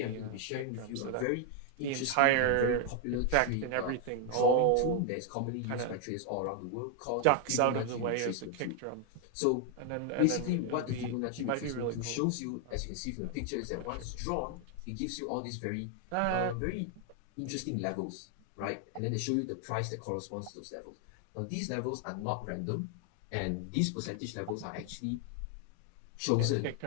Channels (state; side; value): different; both; correlation 0.00